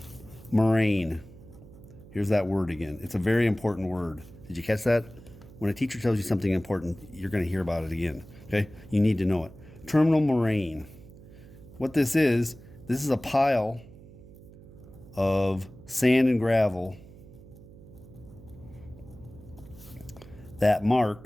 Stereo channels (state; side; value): noise; right; hum, 20 dB below the sound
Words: moraine. Here's that word again. It's a very important word. Did you catch that? When a teacher tells you something important, you're going to hear about it again. Okay? You need to know it. Terminal moraine. What this is a pile of sand and gravel that